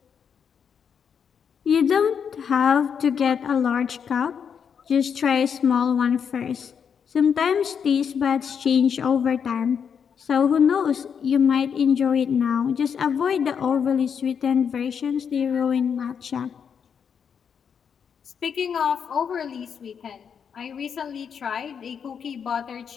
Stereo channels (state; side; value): quieter; right; 7.2 dB